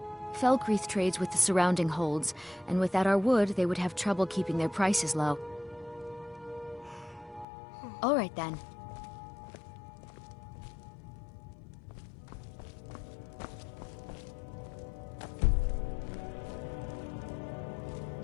Falkreath trades with the surrounding holds, and without our wood, they would have trouble keeping their prices low. All right, then.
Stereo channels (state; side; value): drops out; right; at 7.5 s